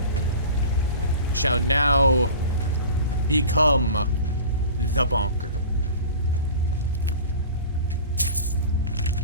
shall now become the bonker.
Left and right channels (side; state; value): both; inverted; correlation -0.38